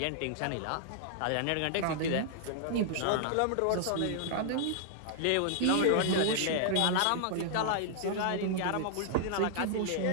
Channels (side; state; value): both; different; correlation -0.01